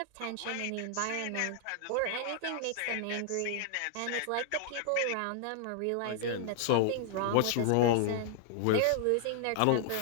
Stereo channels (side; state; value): both; different; correlation -0.01